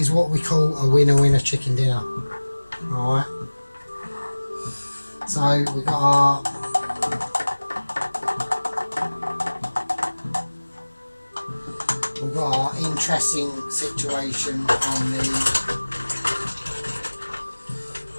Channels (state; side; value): inverted; both; correlation -1.00